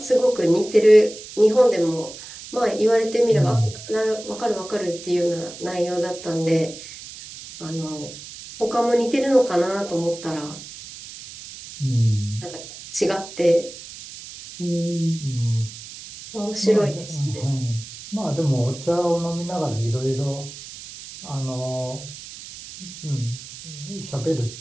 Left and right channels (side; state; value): right; noise; hiss, 14 dB below the sound